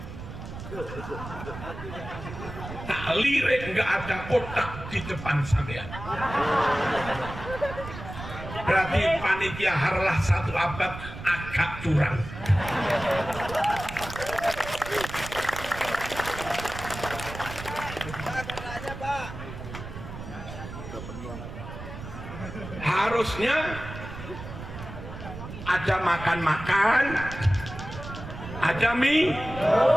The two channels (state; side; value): noise; right; rumble, 11 dB below the sound